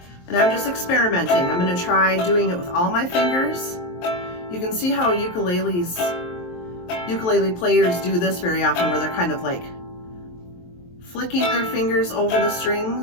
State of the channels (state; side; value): late; right; 23 ms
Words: and I'm just experimenting. I'm going to try doing it with all my fingers. You can see how ukulele players do this very often, where they're kind of like flicking their fingers over the